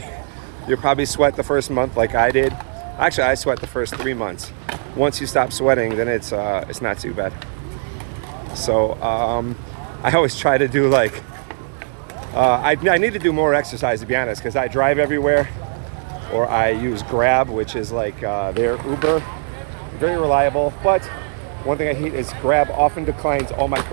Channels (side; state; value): left; silent; digital silence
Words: you'll probably sweat the first month like I did. Actually, I sweat the first 3 months. Once you stop sweating, then it's not too bad. So I always try to do I need to do more exercise, to be honest, because I drive everywhere, or I use Grab, which is like their Uber. Very reliable, but one thing I hate is Grab often declines all my